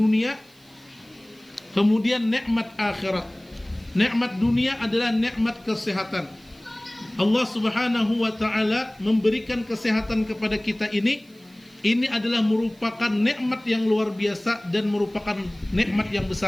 kemudian nikmat akhirat. Nikmat dunia adalah nikmat kesehatan. Allah Subhanahu wa taala memberikan kesehatan kepada kita ini adalah merupakan nikmat yang luar biasa dan merupakan nikmat yang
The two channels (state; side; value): noise; right; hiss, 29 dB below the sound